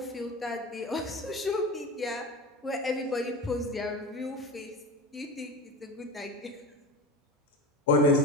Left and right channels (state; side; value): normal; both; correlation 0.28